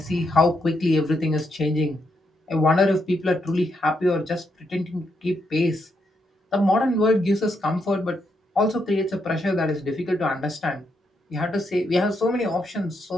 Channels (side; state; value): both; normal; correlation 0.79